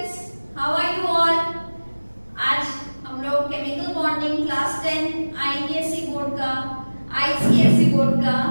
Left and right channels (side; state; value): both; inverted; correlation -1.00